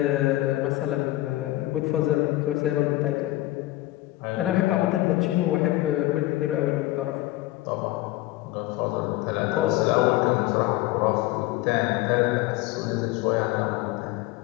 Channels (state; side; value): quieter; right; 17.3 dB